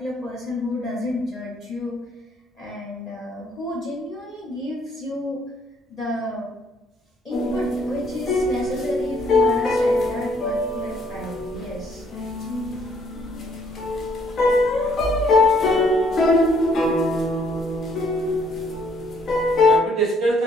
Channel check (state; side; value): normal; both; correlation 0.66